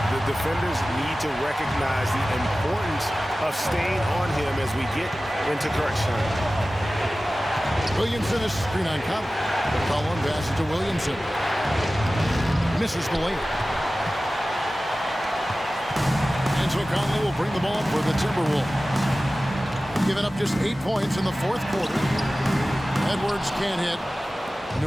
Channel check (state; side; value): normal; both; correlation 0.96